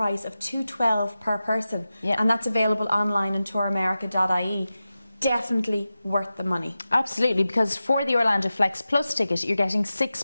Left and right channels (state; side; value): inverted; both; correlation -0.94